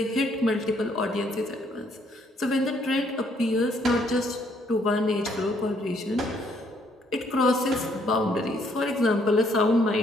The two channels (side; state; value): both; normal; correlation 0.68